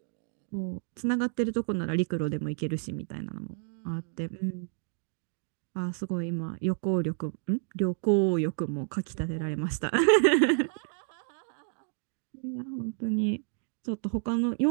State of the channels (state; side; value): silent; left; 58 dB below the other